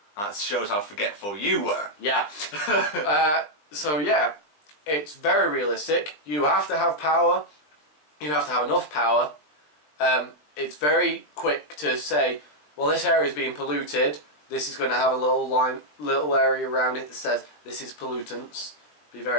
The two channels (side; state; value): right; late; 20 ms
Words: that shows how forgetful you were. Yeah. So yeah, it's very realistic. You have to have power. You have to have enough power. It's very quick to say, well, this area is being polluted. This is going to have a little area around it that says this is pollutants. Be